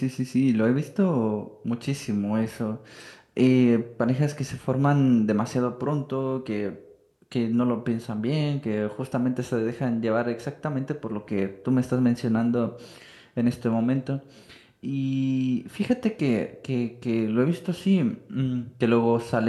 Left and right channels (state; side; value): identical; both; correlation 1.00